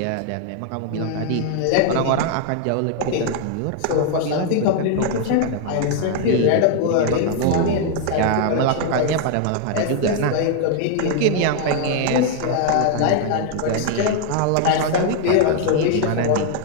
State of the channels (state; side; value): different; both; correlation 0.00